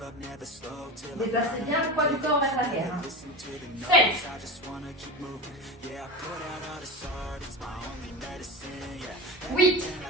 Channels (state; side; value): normal; both; correlation 0.26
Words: Déplacez bien le poids du corps vers l'arrière. 7. 8.